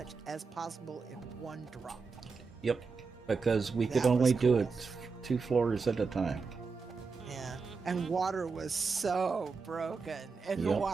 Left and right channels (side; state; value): left; quieter; 4.8 dB